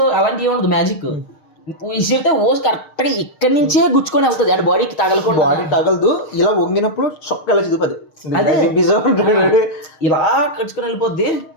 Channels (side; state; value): right; late; 6.5 ms